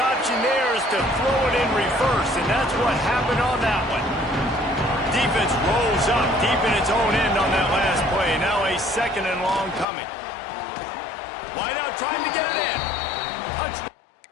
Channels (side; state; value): right; drops out; at 9.9 s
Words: there is to throw it in reverse, and that's what happened on that one. defense rolls up deep in its own end on that last play. Now a 2nd and long coming. Wide out trying to get it in. Touchdown.